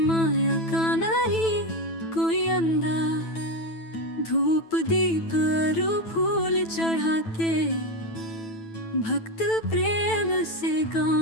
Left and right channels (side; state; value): right; late; 9.1 ms